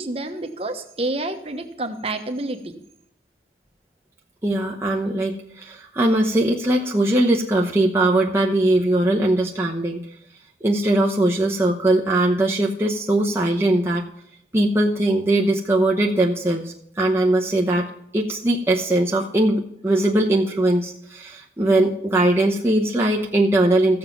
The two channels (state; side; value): normal; both; correlation 0.76